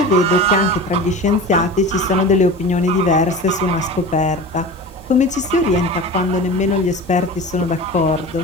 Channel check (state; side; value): normal; both; correlation 0.33